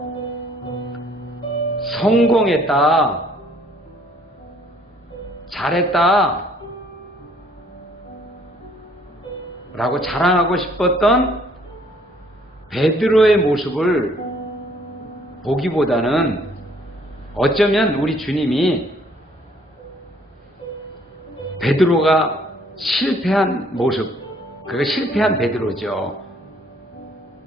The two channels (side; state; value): both; normal; correlation 0.62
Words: 성공했다, 잘했다 라고 자랑하고 싶었던 베드로의 모습을 보기보다는 어쩌면 우리 주님이 베드로가 실패한 모습, 그가 실패한 베드로죠.